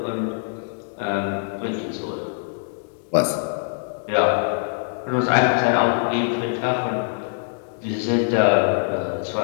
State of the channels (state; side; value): silent; right; digital silence